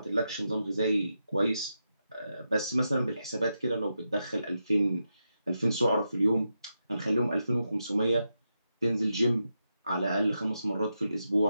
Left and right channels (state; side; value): inverted; both; correlation -0.87